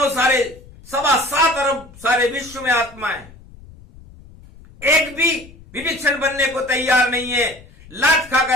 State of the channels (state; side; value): noise; left; rumble, 21 dB below the sound